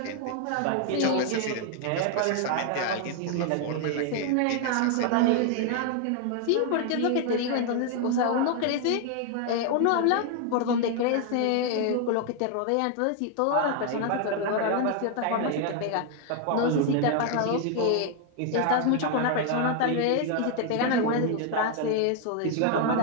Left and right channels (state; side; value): different; both; correlation 0.00